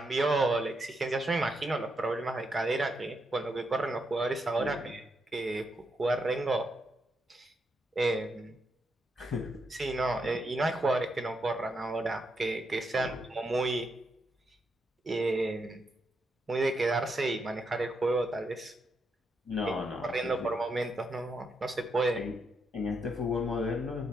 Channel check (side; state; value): both; normal; correlation 0.81